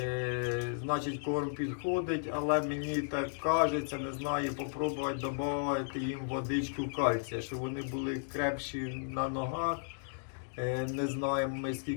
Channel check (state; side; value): silent; right; digital silence